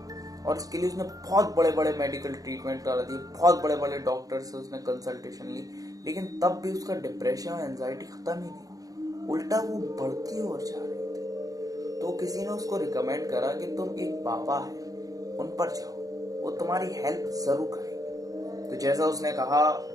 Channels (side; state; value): left; late; 0.17 ms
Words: और इसके लिए उसने बहुत बड़े बड़े मेडिकल ट्रीटमेंट करा दिए, बहुत बड़े बड़े डॉक्टर से उसने कंसल्टेशन ली, लेकिन तब भी उसका डिप्रेशन और एंजाइटी खत्म ही नहीं, उल्टा वो बढ़ती और जा रही थी। तो किसी ने उसको रिकमेंड करा कि तुम एक बाबा है, उन पर जाओ, वो तुम्हारी हेल्प जरूर करेंगे। तो जैसा उसने कहा,